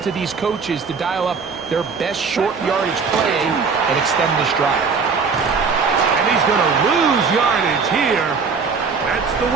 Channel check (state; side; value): quieter; left; 5.2 dB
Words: to these coaches to dial up their best short yardage play and extend this drive. And he's going to lose yardage here. That's the